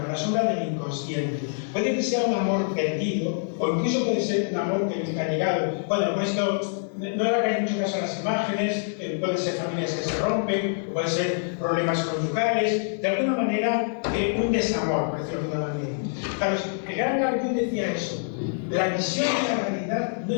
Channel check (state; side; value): silent; right; digital silence